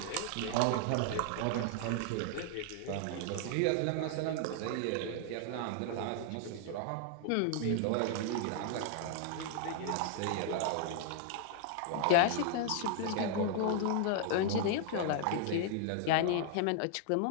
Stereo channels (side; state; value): both; different; correlation 0.00